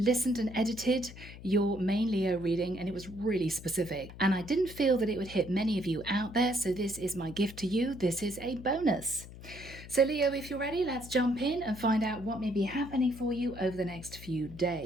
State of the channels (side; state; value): left; noise; hum, 15 dB below the sound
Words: and edited your main Leo reading, and it was really specific. And I didn't feel that it would hit many of you out there, so this is my gift to you. This is a bonus. So Leo, if you're ready, let's jump in and find out what may be happening for you over the next few